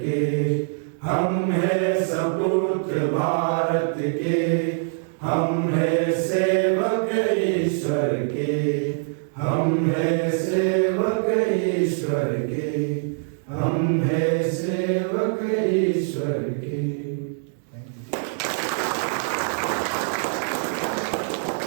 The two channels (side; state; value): left; silent; digital silence